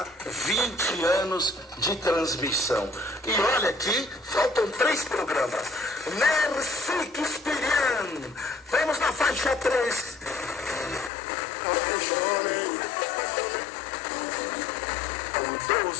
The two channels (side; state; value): right; drops out; at 11.1 s